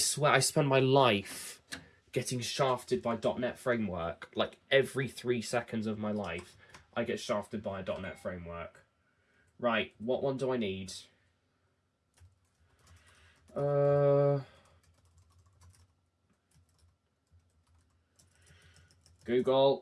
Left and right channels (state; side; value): identical; both; correlation 1.00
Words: I spend my life getting shafted by .NET framework. Like, every 3 seconds of my life, I get shafted by a .NET framework. Right, what one do I need?